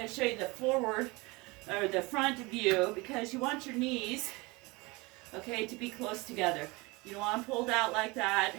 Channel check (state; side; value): quieter; left; 24.8 dB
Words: to show you the forward or the front view because you want your knees, okay, to be close together. You don't want them pulled out like that.